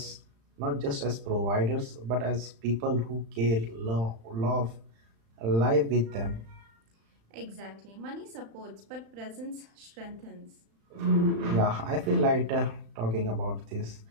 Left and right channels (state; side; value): late; left; 35 ms